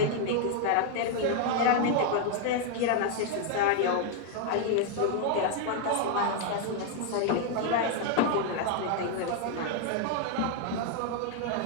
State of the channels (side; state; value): both; different; correlation 0.00